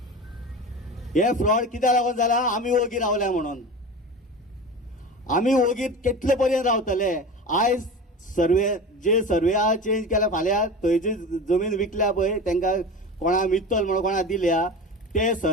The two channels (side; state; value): both; normal; correlation 0.31